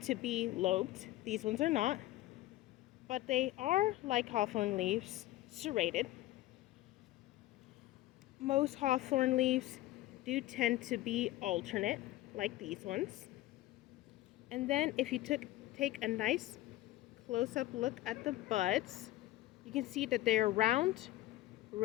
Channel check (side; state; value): right; quieter; 16.4 dB